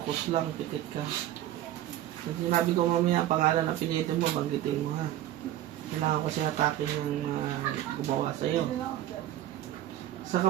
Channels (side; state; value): left; quieter; 13.1 dB